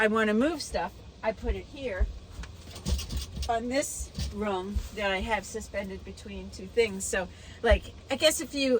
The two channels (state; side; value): identical; both; correlation 1.00